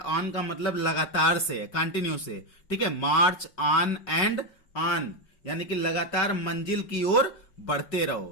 का मतलब लगातार से, कंटिन्यू से। ठीक है, मार्च ऑन एंड ऑन यानी कि लगातार मंजिल की ओर बढ़ते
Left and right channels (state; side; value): late; right; 5.3 ms